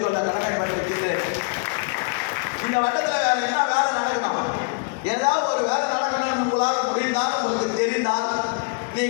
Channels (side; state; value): right; quieter; 34.6 dB